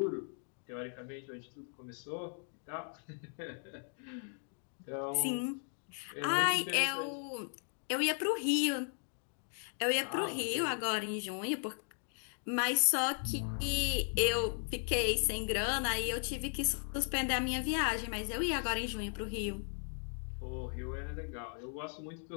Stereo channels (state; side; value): silent; right; 53 dB below the other